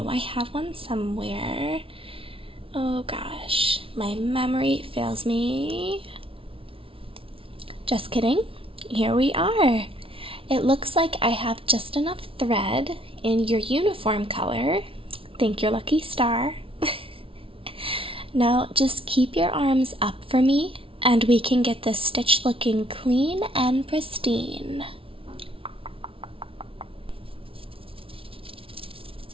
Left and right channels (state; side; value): late; left; 0.26 ms